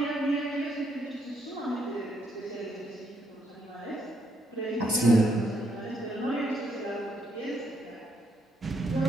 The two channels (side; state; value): both; normal; correlation 0.74